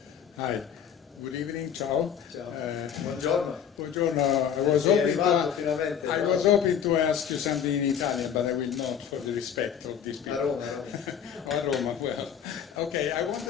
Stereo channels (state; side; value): quieter; right; 8.4 dB